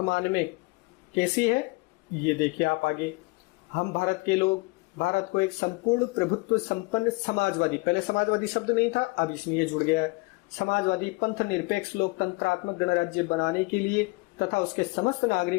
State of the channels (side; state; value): right; quieter; 26.0 dB